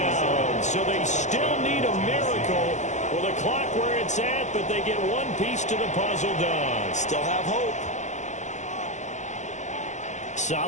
So they still need a miracle with the clock where it's at, but they get one piece to the puzzle done. Still have hope.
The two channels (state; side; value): late; right; 0.34 ms